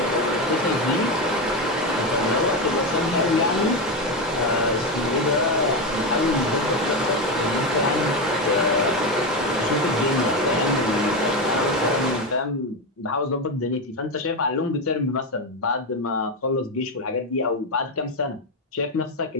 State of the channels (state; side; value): normal; both; correlation 0.13